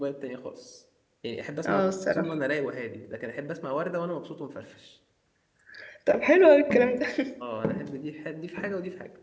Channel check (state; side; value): identical; both; correlation 1.00